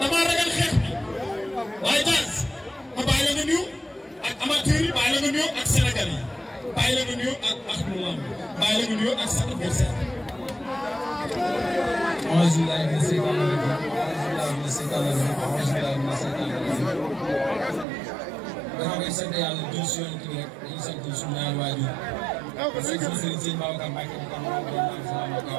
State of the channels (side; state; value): left; drops out; at 17.9 s